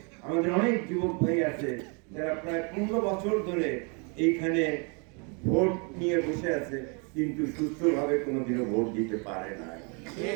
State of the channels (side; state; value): left; quieter; 34.9 dB